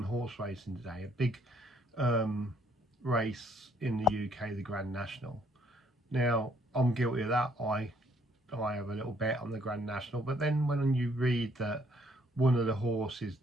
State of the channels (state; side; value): normal; both; correlation 0.65